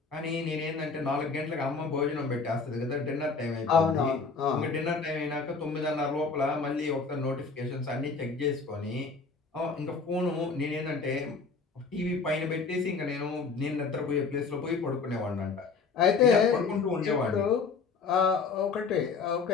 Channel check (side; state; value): right; quieter; 4.7 dB